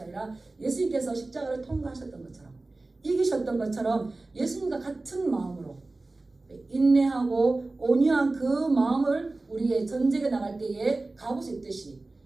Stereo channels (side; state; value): left; quieter; 3.2 dB